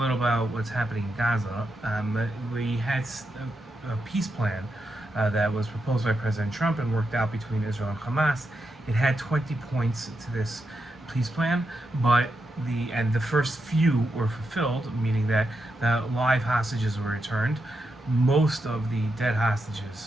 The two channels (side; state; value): both; normal; correlation 0.85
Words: about what's happening in Gaza. We had a peace plan that was proposed by President Trump and worked out between Israel and Hamas. It had 20 points to this peace plan, but the first few were fulfilled, meaning that the live hostages were returned. Most of the dead